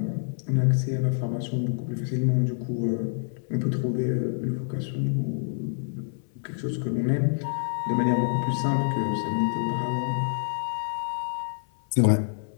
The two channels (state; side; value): silent; right; 60 dB below the other